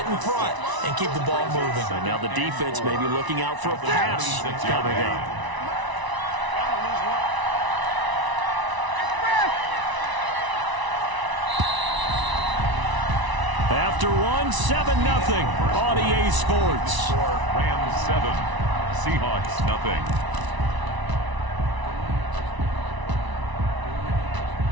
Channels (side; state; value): left; late; 1.0 ms